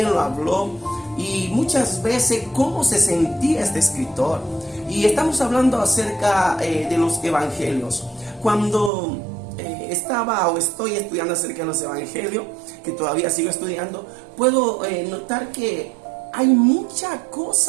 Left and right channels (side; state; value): left; drops out; at 8.9 s